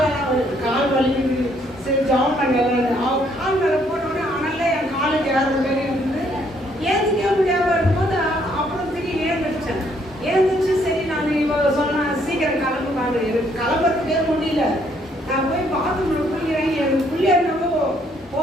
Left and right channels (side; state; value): both; normal; correlation 0.68